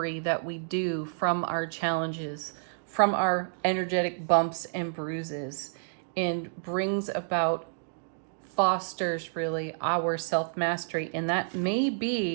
that we do from our challenges, from our energetic bumps and bruises, and brings about, fosters really our self-mastery. And that may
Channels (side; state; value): left; silent; digital silence